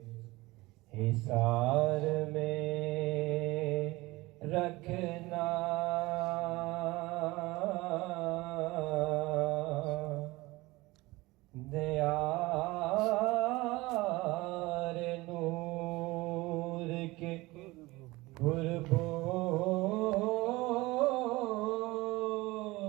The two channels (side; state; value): left; quieter; 20.9 dB